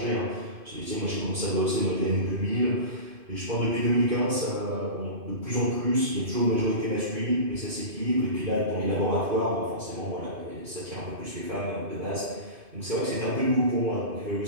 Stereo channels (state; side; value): late; left; 2.5 ms